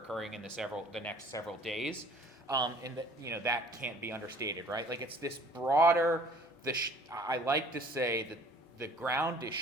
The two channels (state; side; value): normal; both; correlation 0.52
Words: in the next several days, and that that can't be understated, right? Like it's this broader. I like to say that the ground is